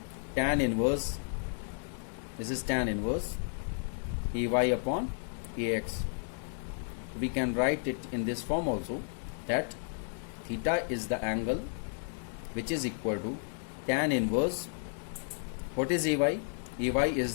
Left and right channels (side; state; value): right; silent; digital silence